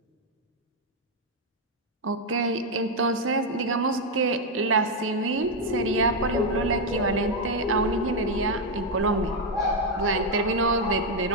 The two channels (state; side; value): normal; both; correlation 0.02